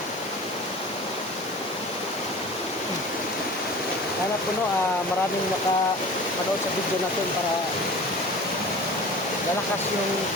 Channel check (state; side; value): normal; both; correlation 0.39